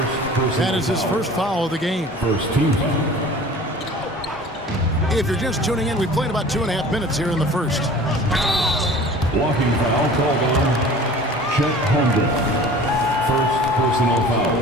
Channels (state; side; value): normal; both; correlation 0.43